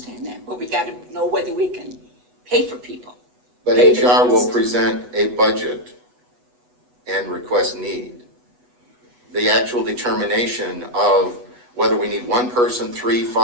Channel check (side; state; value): left; late; 8.1 ms